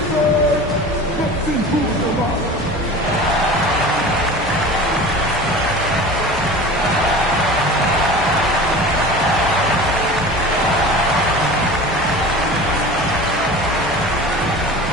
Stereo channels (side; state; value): both; normal; correlation 0.37